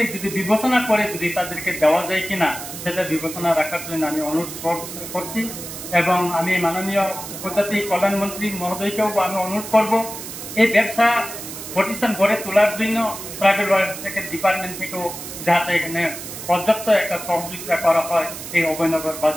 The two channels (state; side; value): noise; right; hiss, 10 dB below the sound